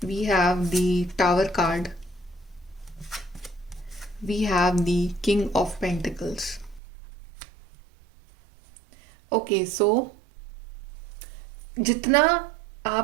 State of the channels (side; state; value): left; drops out; at 6.8 s